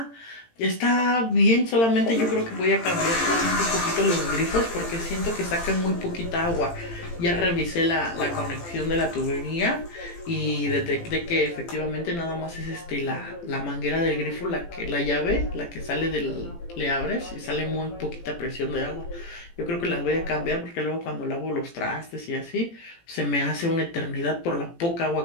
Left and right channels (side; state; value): right; late; 18 ms